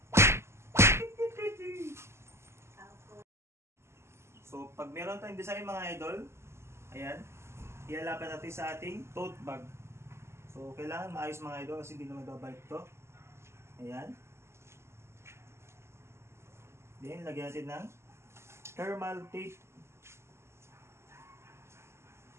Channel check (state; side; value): late; left; 0.13 ms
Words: So pag meron tayong design mga idol, ayan, ilalapit natin sa ating tote bag. So, kailangan maayos mga idol kasi hindi naman babalik ito. Ayan. Then, lagyan natin ng thermal tape.